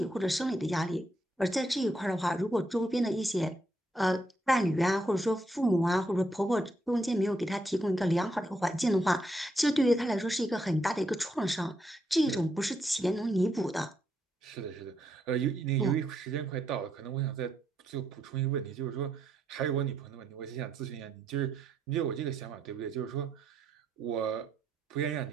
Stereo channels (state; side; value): normal; both; correlation 0.78